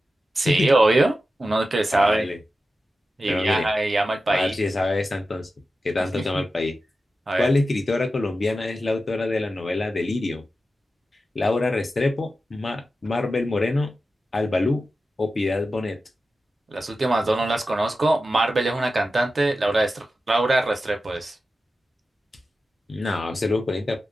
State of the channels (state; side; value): normal; both; correlation 0.92